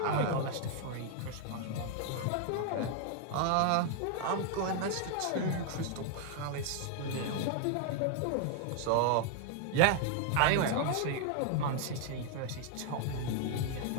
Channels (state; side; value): different; both; correlation 0.00